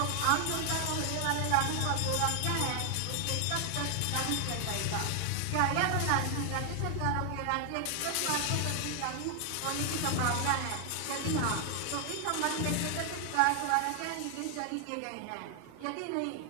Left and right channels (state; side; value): different; both; correlation 0.00